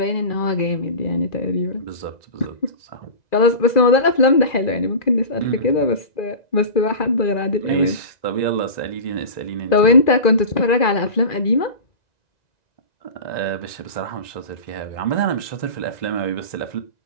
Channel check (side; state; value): right; late; 1.9 ms